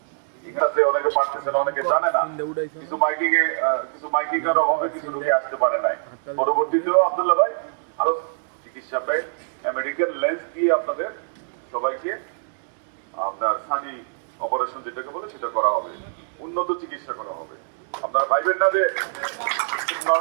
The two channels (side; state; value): left; silent; digital silence